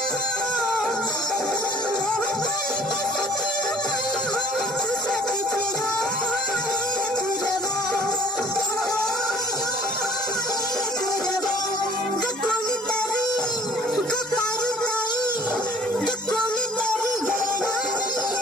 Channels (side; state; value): both; normal; correlation 0.54